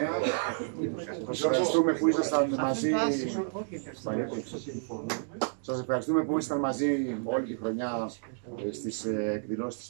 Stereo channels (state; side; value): silent; left; digital silence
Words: Σας ευχαριστούμε που ήσασταν μαζί. Σας ευχαριστούμε που ήσασταν μαζί όλη τη χρονιά στις εκδηλώσεις της